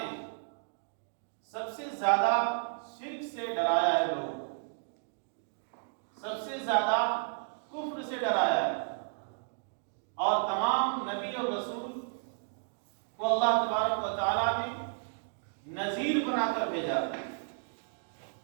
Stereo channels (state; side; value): silent; left; digital silence